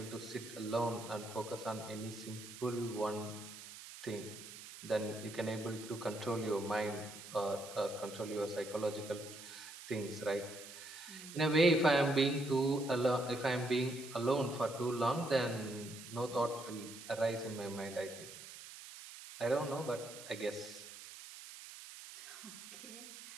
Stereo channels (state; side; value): noise; right; hiss, 13 dB below the sound